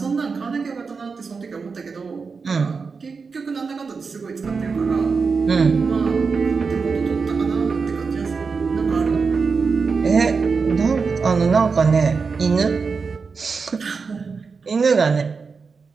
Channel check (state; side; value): quieter; left; 5.0 dB